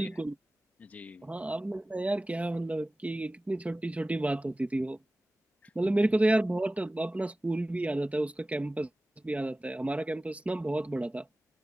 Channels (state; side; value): normal; both; correlation 0.97